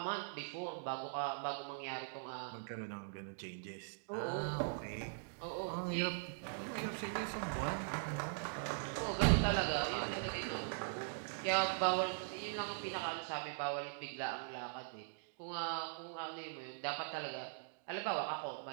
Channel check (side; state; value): left; silent; digital silence